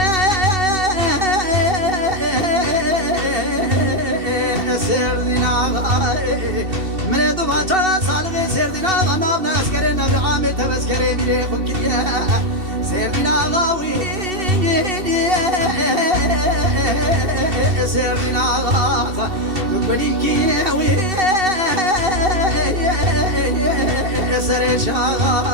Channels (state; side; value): late; left; 2.7 ms